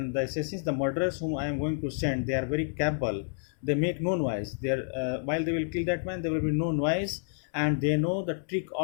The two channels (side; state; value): right; silent; 58 dB below the other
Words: the assassins, the murderers whom I am going to send, they are very capable. They make no noise. They are, while they will kill that man, there will be no noise, and they know the trick